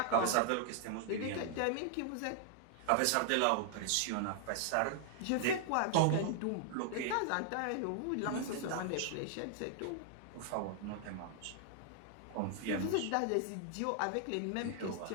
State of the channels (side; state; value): both; different; correlation 0.00